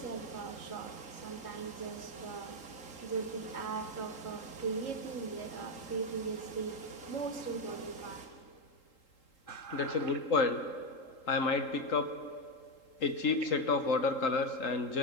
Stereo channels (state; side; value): late; right; 3.8 ms